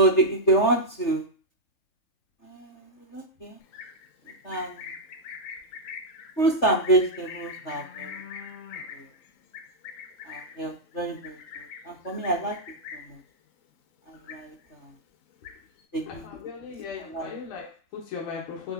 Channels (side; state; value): right; late; 3.3 ms